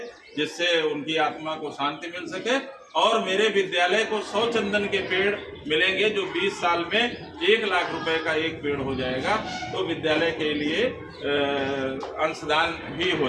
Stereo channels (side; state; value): both; identical; correlation 1.00